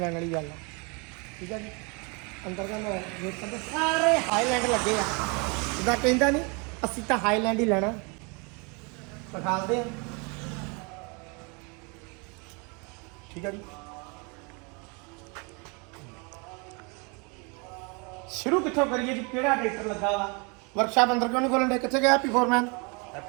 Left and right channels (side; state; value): left; quieter; 31.9 dB